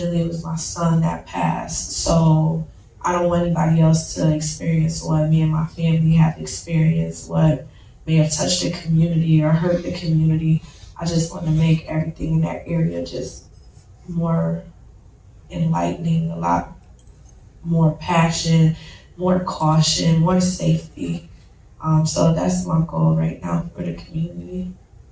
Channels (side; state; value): both; identical; correlation 1.00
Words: it was my son that passed, so I don't want anybody else to experience what me and my family have experienced, what may have touched the community or hurt the community. I just want to make everything in that area just more enlightening, a lot more passion, more caution, more safety. So that's my goal right now for the community.